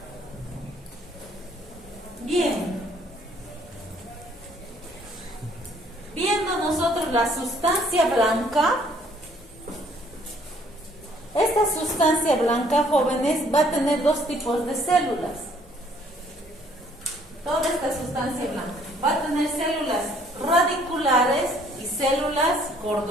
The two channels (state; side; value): normal; both; correlation 0.62